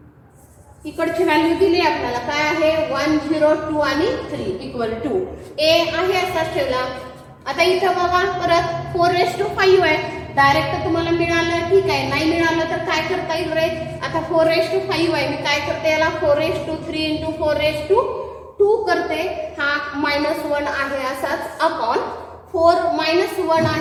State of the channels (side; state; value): both; identical; correlation 1.00